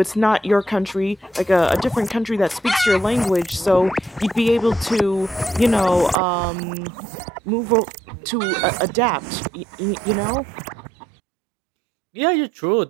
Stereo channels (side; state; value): left; drops out; at 6.2 s